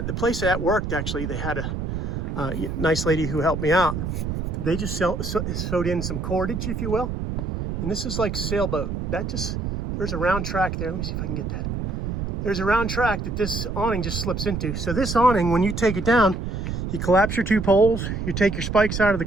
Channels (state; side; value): noise; right; rumble, 3 dB below the sound